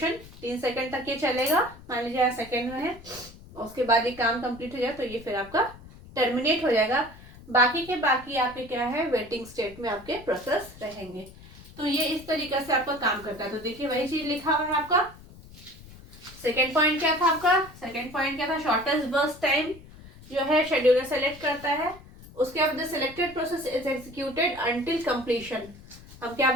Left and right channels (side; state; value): left; noise; rumble, 19 dB below the sound